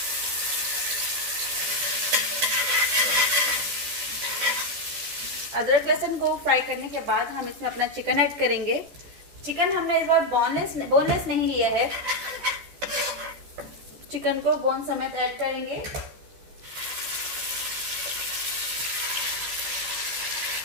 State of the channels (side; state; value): left; late; 14 ms